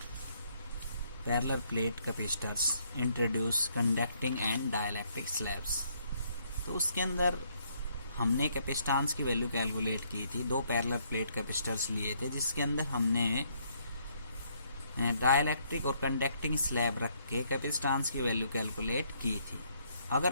parallel plate capacitors, introduce conducting and dielectric slabs. तो उसके अंदर हमने capacitance की value calculate की थी। दो parallel plate capacitors लिए थे जिसके अंदर हमने डाइलेक्ट्रिक और कंडक्टिंग स्लैब रख के कैपेसिटेंस की वैल्यू कैलकुलेट की थी।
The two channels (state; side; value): inverted; both; correlation -0.70